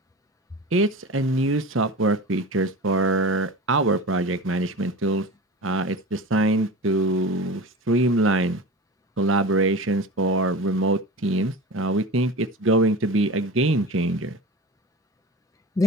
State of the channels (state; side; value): normal; both; correlation 0.32